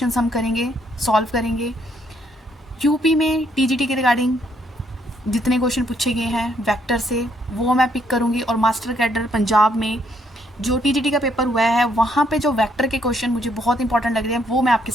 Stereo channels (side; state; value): both; normal; correlation 0.70